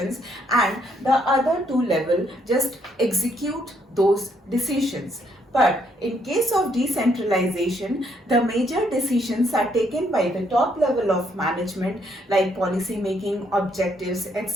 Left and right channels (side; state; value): both; normal; correlation 0.72